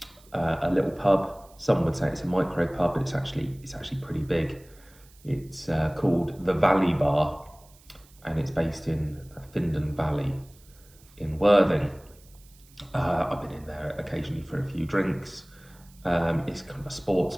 a little pub. Some would say it's a micro pub, but it's actually pretty big. It's called the Valley Bar, and it's based in Findon Valley in Worthing. I've been in there occasionally for a few drinks. It's kind of a sports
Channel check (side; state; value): right; noise; hiss, 27 dB below the sound